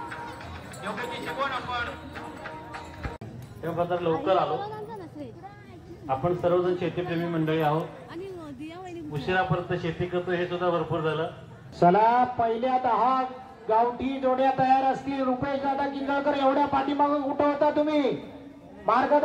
आपण या प्रकारे लवकर आलो। आपण सर्वजण शेतीप्रेमी मंडळी आहोत। उशिरापर्यंत शेती करतो हे सुद्धा भरपूर झालं। चला पहिल्या 10 गावठी जोड्या तयार असतील। रुपेश दादा किंगळकर एवढ्या पाठीमागे कुठं होता तुम्ही? मार्ग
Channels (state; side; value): identical; both; correlation 1.00